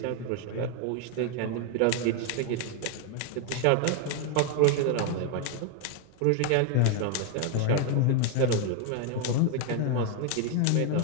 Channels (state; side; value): different; both; correlation 0.01